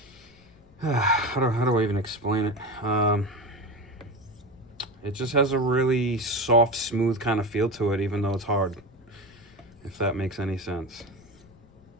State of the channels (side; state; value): left; noise; rumble, 27 dB below the sound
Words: how do I even explain it? it just has a really soft, smooth kind of feel to it, even though it's hard, if that makes any sense.